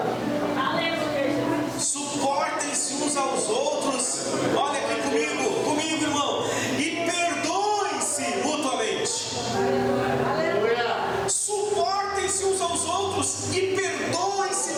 Suportem-se uns aos outros. Olha aqui comigo, irmão. E perdoem-se mutuamente. Suportem-se uns aos outros e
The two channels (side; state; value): both; identical; correlation 1.00